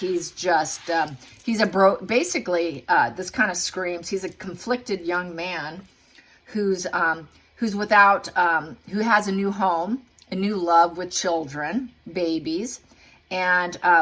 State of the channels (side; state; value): both; identical; correlation 1.00